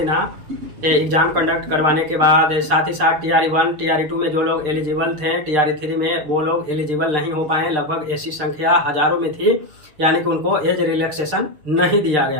एग्जाम कंडक्ट करवाने के बाद। साथ ही साथ TRE 1 TRE 2 में जो लोग एलिजिबल थे, TRE 3 में वो लोग एलिजिबल नहीं हो पाए। लगभग ऐसी संख्या हजारों में थी, यानी कि उनको एज रिलैक्सेशन नहीं दिया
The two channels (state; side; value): late; left; 6.7 ms